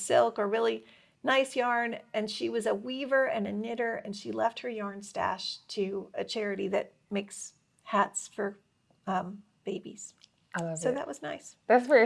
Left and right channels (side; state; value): both; identical; correlation 1.00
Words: or really nice yarn. And she was a weaver and a knitter, and she left her yarn stash to a charity that makes hats for babies. I love So it. that was nice. That's